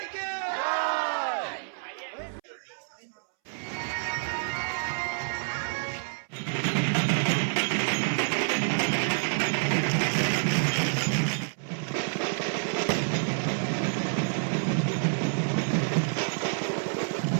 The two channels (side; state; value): left; silent; 59 dB below the other